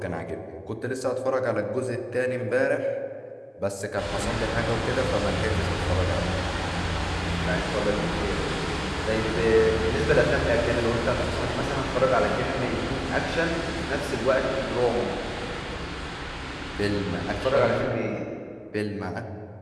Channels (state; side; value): identical; both; correlation 1.00